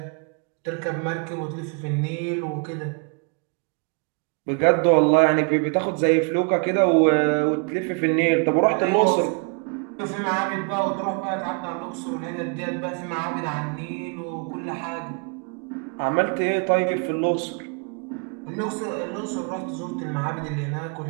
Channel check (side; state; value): left; quieter; 37.4 dB